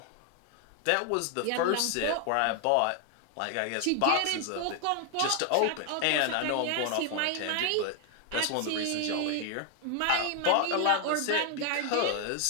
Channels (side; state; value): both; different; correlation 0.00